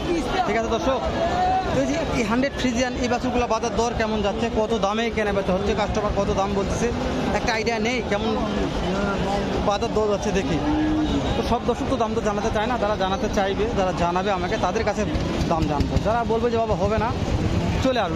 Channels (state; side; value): identical; both; correlation 1.00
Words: ঠিক আছে দর্শক, এই যে এই 100 ফ্রিজিয়ান এই বাছুরগুলো বাজার দর কেমন যাচ্ছে, কত দামে কেনা বেচা হচ্ছে, কাস্টমার কত দাম বলতেছে, একটা আইডিয়া নেই কেমন বাজার দর যাচ্ছে দেখি। তো সব দর্শক তো দাম তো জানাতে চায় না, যারা জানাতে চাইবে, যারা জানাবে আমাকে, তাদের কাছে দাম জানবো। যারা বলবে যে বাবা হবে না, চলে